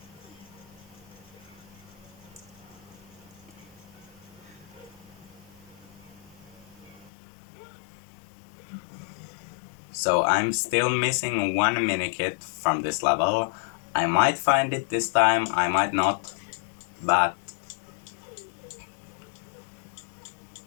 So I'm still missing one minikit from this level. I might find it this time, I might not, but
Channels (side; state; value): right; drops out; at 7.1 s